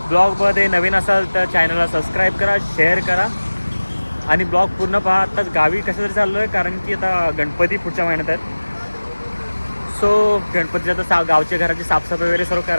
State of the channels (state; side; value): inverted; both; correlation -1.00